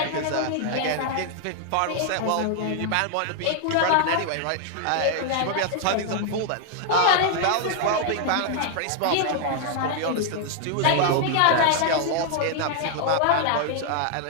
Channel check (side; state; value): both; different; correlation 0.00